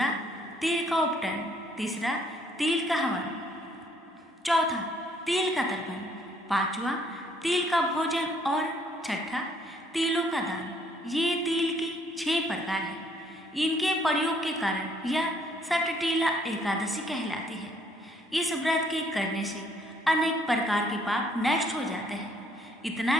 तिल का उपटन, तीसरा तिल का हवन, चौथा तिल का तर्पण, पांचवा तिल का भोजन और छठा तिलों का दान। ये तिल की 6 प्रकार है। इनके प्रयोग के कारण यह सटटीला एकादशी कहलाती है। इस व्रत के करने से अनेक प्रकार के पाप नष्ट हो जाते हैं। इतना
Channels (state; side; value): normal; both; correlation 0.65